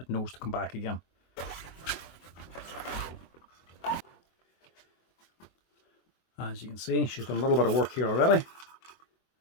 knows to come back again. As you can see, she's done a little bit of work here already.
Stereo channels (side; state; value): right; late; 23 ms